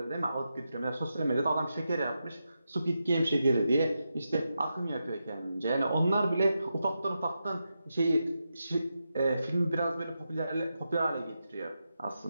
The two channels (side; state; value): both; inverted; correlation -0.87